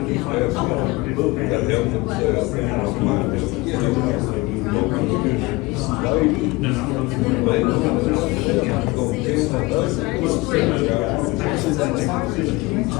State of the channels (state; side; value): quieter; right; 22.6 dB